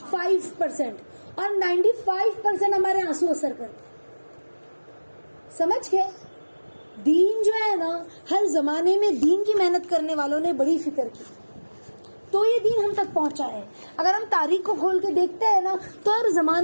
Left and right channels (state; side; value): inverted; both; correlation -1.00